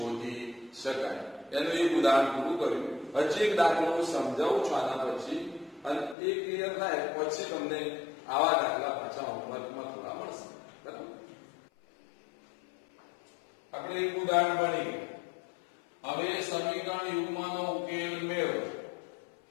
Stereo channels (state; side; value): drops out; right; at 6.2 s